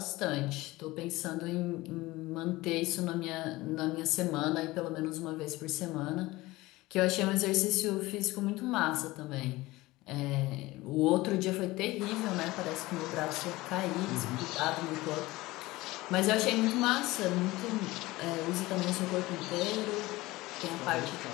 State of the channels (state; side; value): quieter; right; 19.6 dB